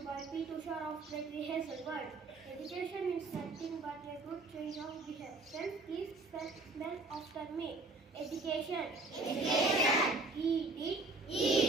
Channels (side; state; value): left; quieter; 3.3 dB